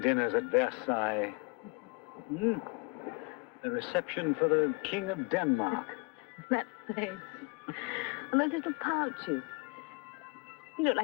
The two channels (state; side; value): quieter; right; 30.7 dB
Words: at Versailles. Hmm? The reception for the King of Denmark. That face. And those little pouches. You look